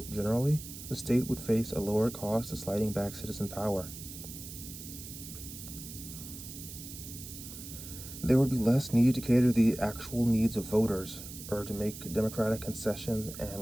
generally, the state would face a lower cost of sliding back citizen power. There would be less need to cater to the actual needs of voters or to make democratic concessions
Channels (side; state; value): right; noise; hiss, 12 dB below the sound